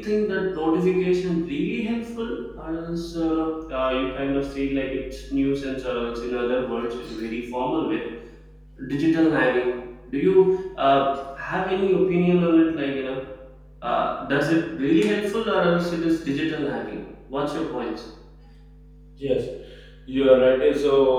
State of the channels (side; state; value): both; identical; correlation 1.00